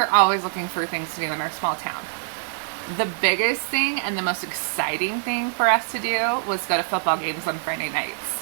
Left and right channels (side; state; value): left; silent; digital silence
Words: always looking for things to do in our small town. The biggest thing and the most exciting thing for us to do was go to football games on Friday nights.